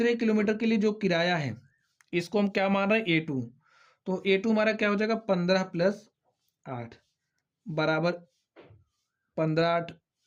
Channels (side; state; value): both; identical; correlation 1.00